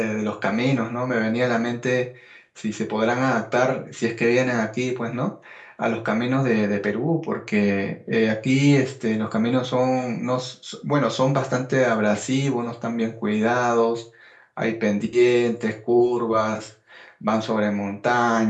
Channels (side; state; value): both; identical; correlation 1.00